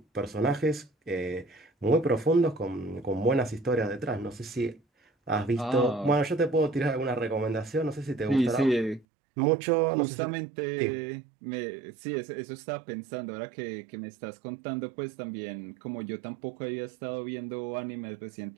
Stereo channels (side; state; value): left; drops out; at 9.1 s